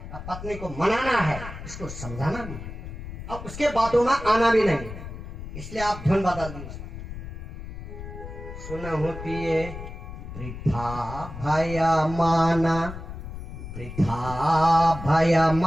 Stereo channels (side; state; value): left; noise; rumble, 10 dB below the sound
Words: अब पत्नी को मनाना है, इसको समझाना भी है, अब उसके बातों में आना भी नहीं, इसलिए आप धुन बदल दीजिए। सुनहु पिए वृथा भय माना, वृथा भय